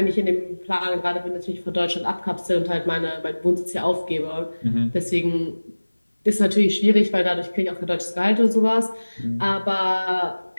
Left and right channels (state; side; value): inverted; both; correlation -1.00